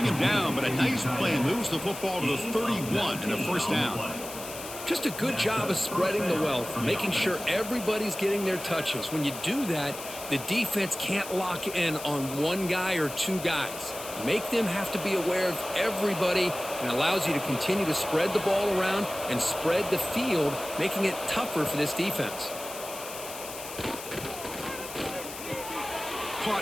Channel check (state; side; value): noise; left; hiss, 11 dB below the sound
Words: him down, but a nice play moves the football to the 31 and a 1st down. Just a good job of spreading the wealth, making sure everybody's getting their touches. When you do that, the defense can't lock in on one guy or 2 guys. Make them have to be aware of everybody and allows you to continue to spread the ball around and spread the field, making it tougher for this defense.